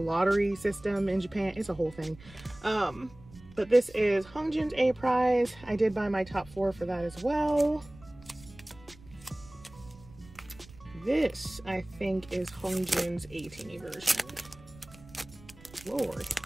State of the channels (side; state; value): right; noise; rumble, 21 dB below the sound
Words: system in Japan. It's a whole thing. But this is Hongjoon's A prize. I did buy my top 4 for that as well. This, I think, is Hongjoon's 18E version. Lord,